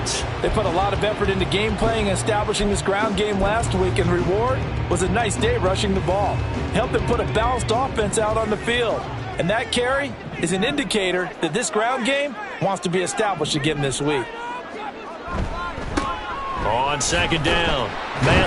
They put a lot of effort into game playing and establishing this ground game last week, and the reward was a nice day rushing the ball. Helped them put a balanced offense out on the field. And that carry is an indicator that this ground game wants to be established again this week. On second down,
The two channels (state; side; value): identical; both; correlation 1.00